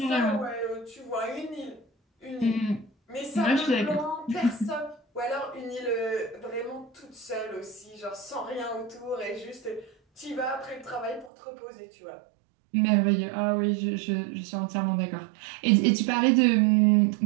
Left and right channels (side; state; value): left; drops out; at 11.3 s